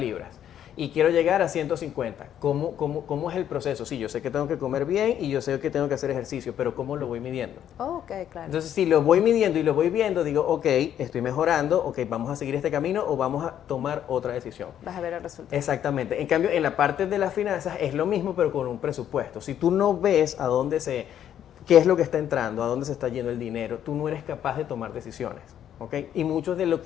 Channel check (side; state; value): right; quieter; 10.2 dB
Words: y quiero llegar a 150. ¿Cómo es el proceso? Sí, yo sé que tengo que comer bien y yo sé que tengo que hacer ejercicio, pero ¿cómo lo voy midiendo? Claro. Entonces, si lo voy midiendo y lo voy viendo, digo, ok, estoy mejorando, ok, vamos a seguir este camino o vamos a tomar otra decisión. Vas a ver el resultado. Exactamente. En cambio, en la parte de las finanzas es lo mismo, pero con un presupuesto. Si tú no ves qué es lo que está entrando, a dónde se está yendo el dinero, tú no eres capaz de tomar decisiones. ¿Okay? Y muchos de lo